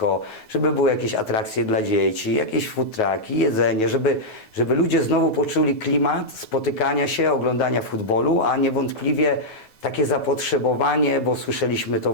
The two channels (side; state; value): right; late; 9.4 ms